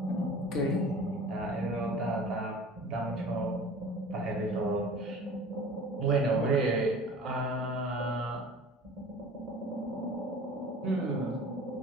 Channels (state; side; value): normal; both; correlation 0.42